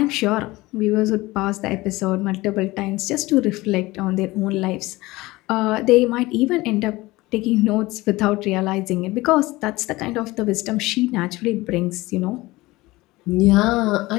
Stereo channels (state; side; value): quieter; right; 20.1 dB